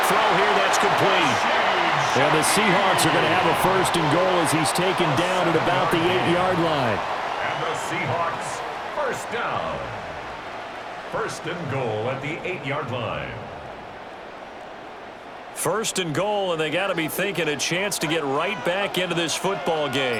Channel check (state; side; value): identical; both; correlation 1.00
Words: throw here, that's complete. And the Seahawks are going to have a 1st and goal as he's taken down at about the 8-yard line. And the Seahawks, 1st down. 1st and goal at the 8-yard line. 1st and goal, and they got to be thinking a chance to get right back into this football